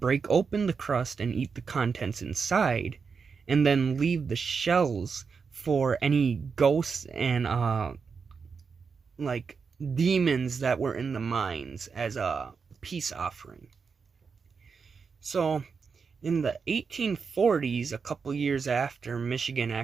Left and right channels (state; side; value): quieter; left; 5.5 dB